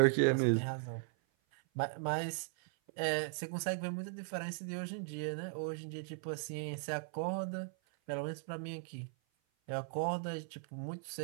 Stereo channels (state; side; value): silent; left; 53 dB below the other